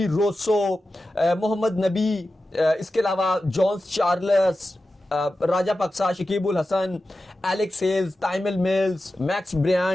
Rossouw, Mohammad Nabi, इसके अलावा Johnson Charles, Rajapaksa, Shakib al Hasan, Alex Hales, Tymal Mills, Max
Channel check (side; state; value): both; normal; correlation 0.93